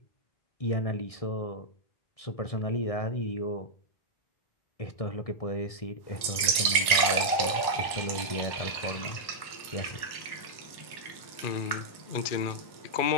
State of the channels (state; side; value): late; right; 1.1 ms